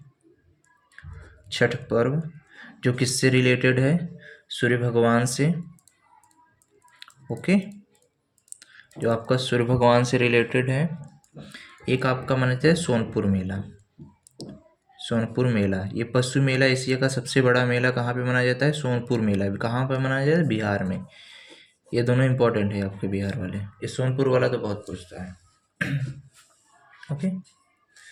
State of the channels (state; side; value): identical; both; correlation 1.00